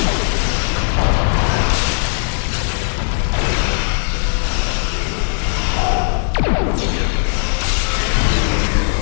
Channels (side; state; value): right; silent; 59 dB below the other